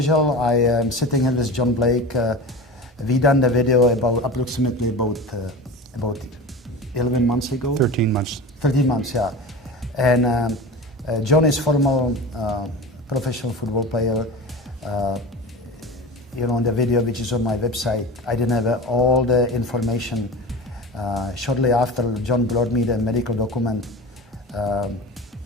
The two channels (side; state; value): both; normal; correlation 0.31